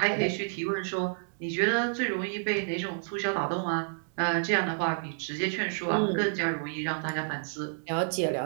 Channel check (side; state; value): left; silent; digital silence